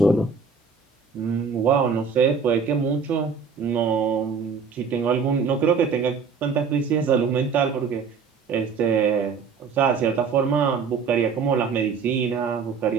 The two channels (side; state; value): left; quieter; 5.7 dB